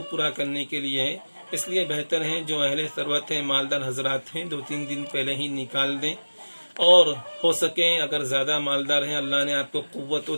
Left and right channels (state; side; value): inverted; both; correlation -1.00